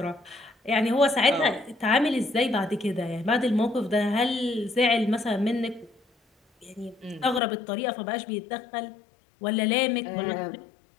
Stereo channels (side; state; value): right; drops out; at 7.4 s